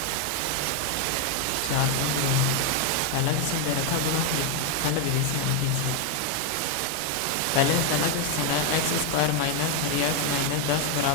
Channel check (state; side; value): different; both; correlation 0.01